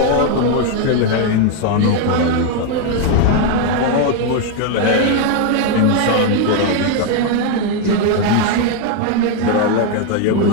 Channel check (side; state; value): both; different; correlation 0.01